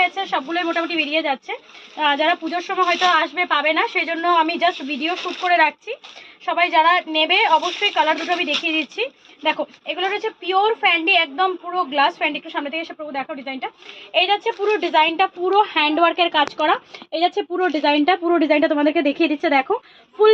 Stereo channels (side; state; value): both; identical; correlation 1.00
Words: সবগুলোই মোটামুটি বেরিয়ে যাচ্ছে। যারা পুজোর সময় হয়তো আসবে পাবে না, সেই জন্য আমি জাস্ট ভিডিও শ্যুট করে রাখছি। সবাই যারা নেবে অবশ্যই কালার দুটো আমি দেখিয়ে দিচ্ছি। দেখো, এগুলো রয়েছে পিওর ফ্যান্ডি, একদম পুরো গ্লাস ফ্যান্ডি। একটু সামনে থেকে এসে পুরো দেখো ডিজাইনটা। এই যাচ্ছে পুরো ডিজাইনটা, পুরো হ্যান্ডওয়ার্কের কাজ করা। এই যাচ্ছে পুরো ডিজাইনটা তোমাদেরকে দেখিয়ে দিচ্ছে। দেখো,